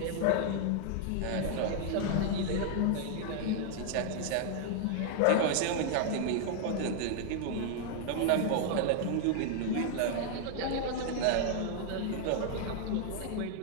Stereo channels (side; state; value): both; different; correlation 0.00